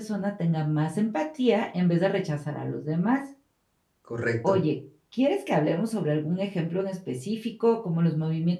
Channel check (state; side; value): identical; both; correlation 1.00